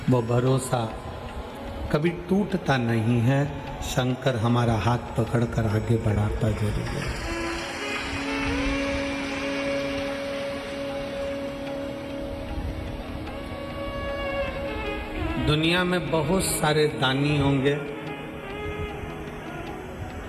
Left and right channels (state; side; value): identical; both; correlation 1.00